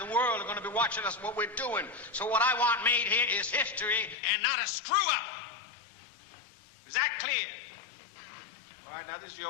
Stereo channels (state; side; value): drops out; right; at 4.2 s